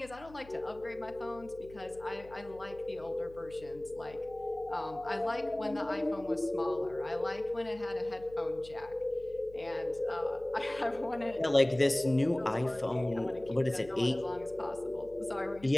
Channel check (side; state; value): left; noise; hum, 20 dB below the sound